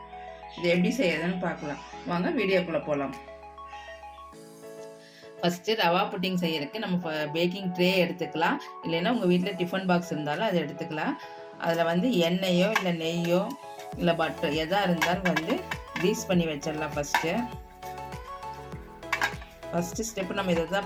இது எப்படி செய்யறதுன்னு பார்க்கலாம் வாங்க, வீடியோக்குள்ளே போகலாம். ஃபஸ்ட்டு ரவா புட்டிங் செய்யறதுக்கு நம்ம பேக்கிங் ட்ரே எடுத்துக்கலாம். இல்லைன்னா உங்கள் வீட்டில் டிஃபன் பாக்ஸ் இருந்தாலும் அதை எடுத்துக்கலாம். அதில் எண்ணெயோ இல்லை நெய்யோ இல்லை பட்டர் எதாக இருந்தாலும் க்ரீஸ் பண்ணி வச்சிடலாம். ஃபஸ்ட்டு ஸ்டெப்பு நம்ம இதை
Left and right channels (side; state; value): both; identical; correlation 1.00